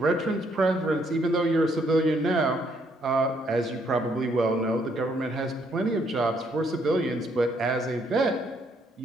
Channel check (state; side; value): normal; both; correlation 0.70